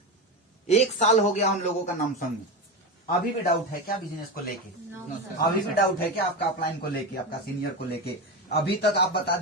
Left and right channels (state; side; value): normal; both; correlation 0.18